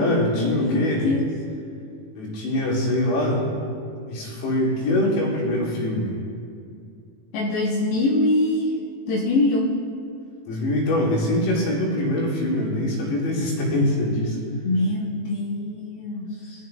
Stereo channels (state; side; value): late; right; 18 ms